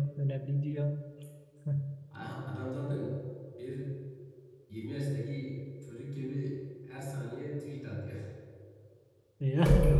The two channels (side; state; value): both; identical; correlation 1.00